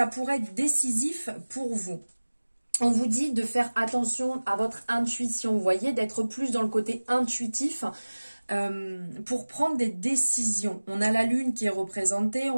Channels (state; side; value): inverted; both; correlation -1.00